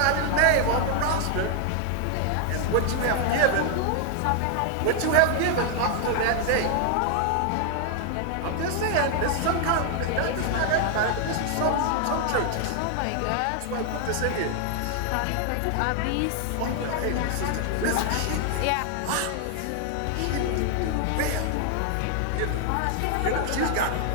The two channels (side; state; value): both; different; correlation 0.00